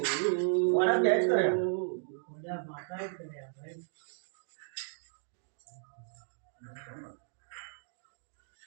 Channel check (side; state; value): left; silent; digital silence